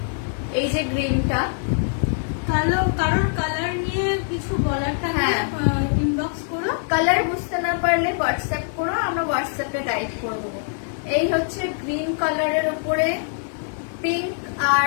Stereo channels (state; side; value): silent; right; 63 dB below the other